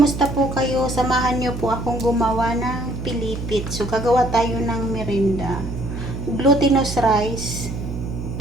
po kayo? Samahan niyo po akong gumawa ng pilipit. So, gagawa tayo ng merinda. Glutinous rice.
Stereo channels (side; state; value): right; noise; hum, 7 dB below the sound